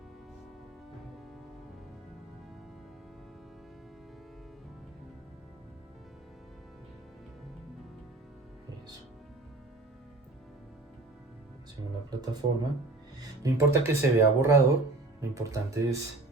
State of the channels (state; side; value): quieter; left; 3.2 dB